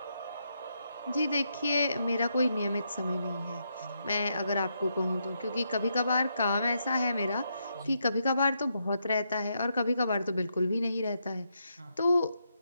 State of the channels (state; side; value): inverted; both; correlation -0.81